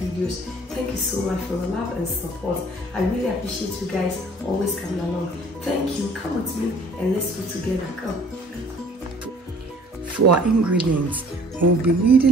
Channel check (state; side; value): normal; both; correlation 0.53